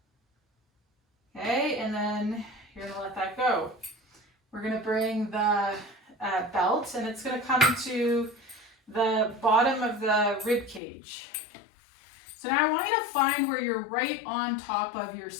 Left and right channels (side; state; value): right; drops out; at 10.8 s